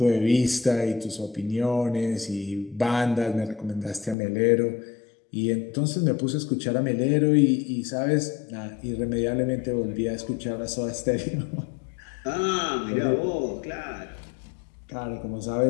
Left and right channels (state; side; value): drops out; right; at 4.2 s